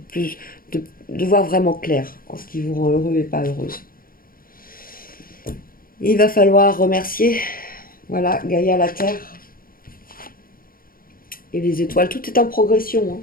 voir vraiment clair en ce qui vous rend heureux et pas heureuse. Il va falloir remercier, voilà, Gaïa la Terre, Et les étoiles, tout est en progression, hein.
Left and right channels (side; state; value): right; late; 0.42 ms